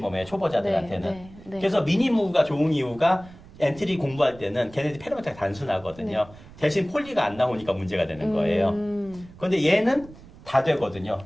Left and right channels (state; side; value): noise; right; rumble, 20 dB below the sound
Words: 초보자들한테는. 그래서 미니무가 좋은 이유가 엔트리 공부할 때는 걔네들이 페로메타가 단순하거든요. 대신 폴리가 안 나오니까 문제가 되는 거예요. 그런데 얘는 다 되거든요.